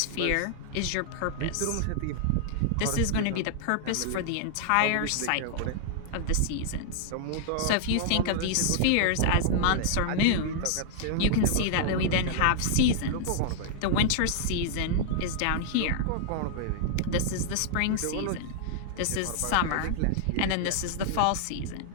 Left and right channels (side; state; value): both; different; correlation -0.01